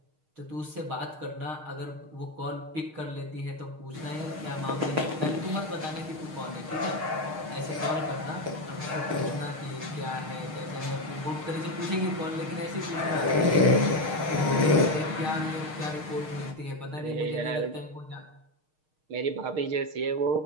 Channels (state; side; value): late; left; 6.5 ms